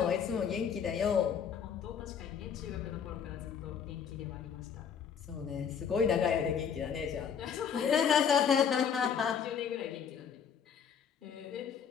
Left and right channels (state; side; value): quieter; right; 7.4 dB